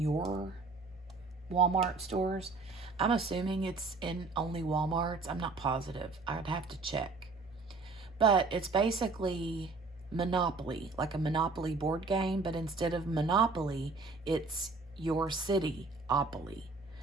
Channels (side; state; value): left; quieter; 3.8 dB